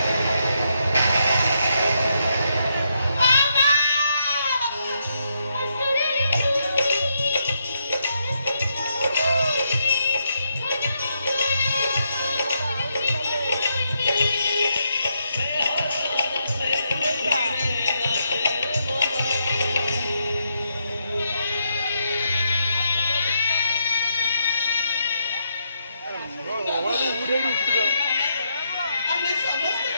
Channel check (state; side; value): inverted; both; correlation -0.79